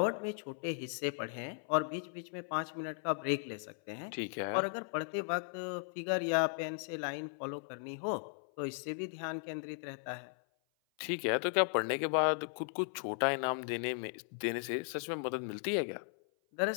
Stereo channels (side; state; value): right; silent; 53 dB below the other